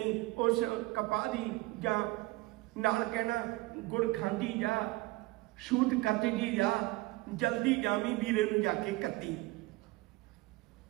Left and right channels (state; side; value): quieter; left; 21.0 dB